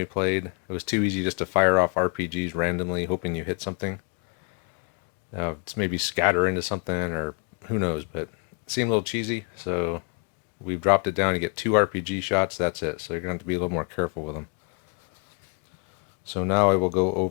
played, it was too easy just to fire off RPGs randomly, hoping you hit something. It's maybe scatter into something, or who knows, but it seemed a little cheesy, so we've dropped it down. You get 2 RPG shots, that's it. So you're going to have to be a little more careful with them. So now I will go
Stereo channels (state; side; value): quieter; right; 37.5 dB